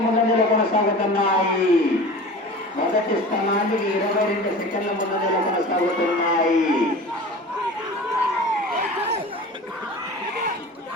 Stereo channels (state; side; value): normal; both; correlation 0.37